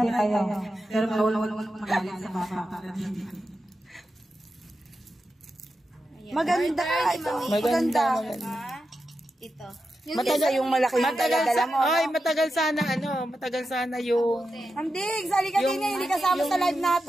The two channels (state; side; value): normal; both; correlation 0.89